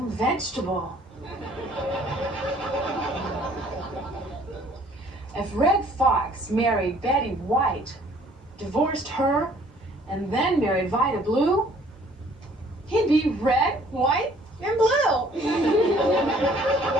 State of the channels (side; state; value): both; normal; correlation 0.58